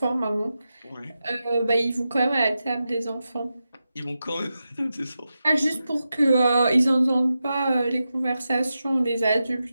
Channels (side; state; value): both; inverted; correlation -0.90